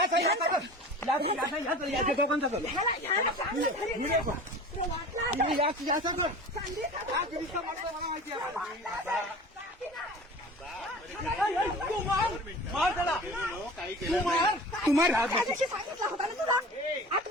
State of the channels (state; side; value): normal; both; correlation 0.38